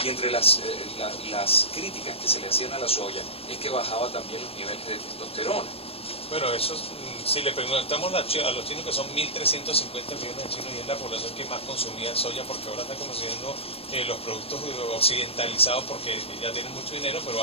y entre las críticas que se le hacían a la soya es que bajaba también los niveles de testosterona. Bueno, eso si le preguntamos a los chinos, que son 1.350 millones de chinos y es la población que más consumía soya, porque ahora está consumiendo los productos occidentalizados porque ya tienen mucho dinero, pero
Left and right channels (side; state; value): right; late; 0.28 ms